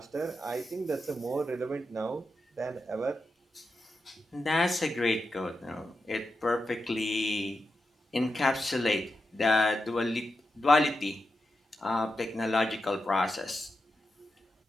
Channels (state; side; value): normal; both; correlation 0.88